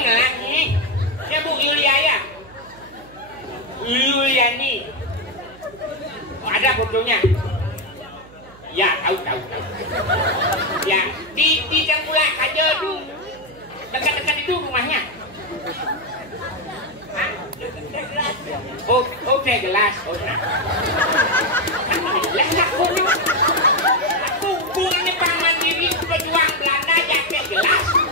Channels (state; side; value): noise; right; hum, 23 dB below the sound